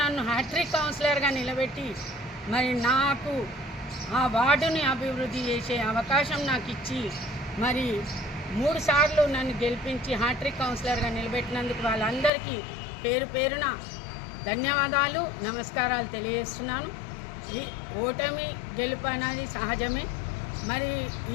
నన్ను హ్యాట్రిక్ కౌన్సిలర్గా నిలబెట్టి మరి నాకు ఆ వార్డుని అభివృద్ధి చేసే అవకాశం నాకు ఇచ్చి మరి 3 సార్లు నన్ను గెలిపించి హ్యాట్రిక్ కౌన్సిలర్గా నిలబెట్టినందుకు వాళ్ళందరికీ పేరు పేరున ధన్యవాదాలు, నమస్కారాలు తెలియజేస్తున్నాను. ఈ ఓటమి గెలుపు అనేది సహజమే. మరి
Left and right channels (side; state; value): right; drops out; at 12.3 s